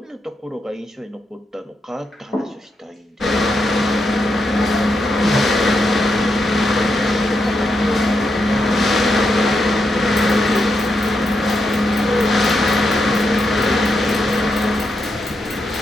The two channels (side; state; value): both; normal; correlation 0.83